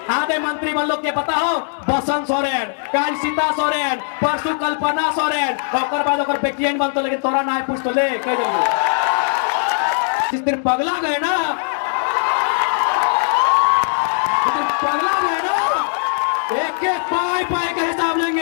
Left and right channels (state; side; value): silent; right; 66 dB below the other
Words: आधे मंत्री मन लोग के पता हो, बसंत सोरेन, कल सीता सोरेन, परसों कल्पना सोरेन, और बाद ओकर बेटियन बनतो, लेकिन तोरा ना पूछ तो ले कह देंगे। इस दिन पगला गए ना, पगला गए ना, एक एक पाए पाए का हिसाब